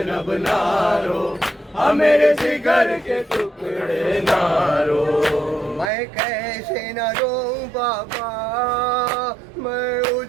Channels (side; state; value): left; drops out; at 5.9 s